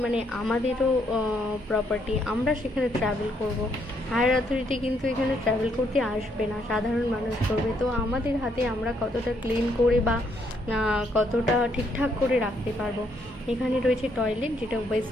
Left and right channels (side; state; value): both; normal; correlation 0.73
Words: মানে আমাদেরও প্রপার্টি। আমরা সেখানে ট্রাভেল করব, হায়ার অথরিটি কিন্তু এখানে ট্রাভেল করতে আসবে না, সাধারণ মানুষ করবে। তো আমাদের হাতে আমরা কতটা ক্লিন করে বা কতটা ঠিকঠাক করে রাখতে পারবো। এখানে রয়েছে টয়লেট, যেটা